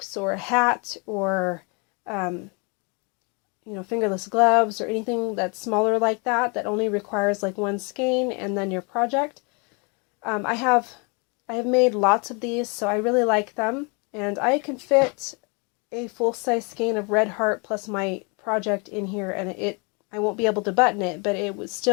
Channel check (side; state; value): right; quieter; 32.9 dB